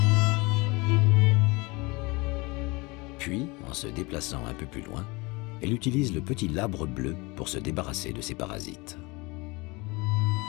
Puis, en se déplaçant un peu plus loin, elle utilise le petit labre bleu pour se débarrasser de ses parasites.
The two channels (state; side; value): quieter; right; 25.5 dB